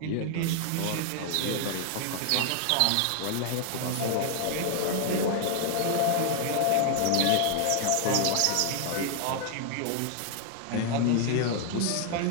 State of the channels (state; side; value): different; both; correlation 0.00